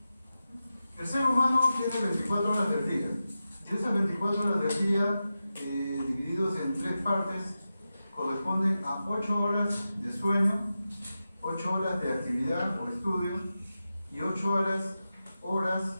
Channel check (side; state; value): both; inverted; correlation -0.92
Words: El ser humano tiene 24 horas del día, y esas 24 horas del día, divididos en 3 partes, corresponden a 8 horas de sueño, 8 horas de actividad o estudio y 8 horas